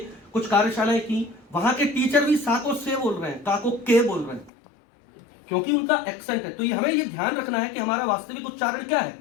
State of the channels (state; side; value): drops out; right; at 4.5 s